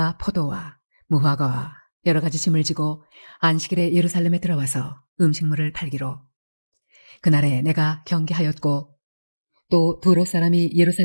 포도와 무화과와 여러 가지 짐을 지고 안식일에 예루살렘에 들어와서 음식물을 팔기로 그날에 내가 경계하였고 또 두로 사람이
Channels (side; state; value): both; inverted; correlation -1.00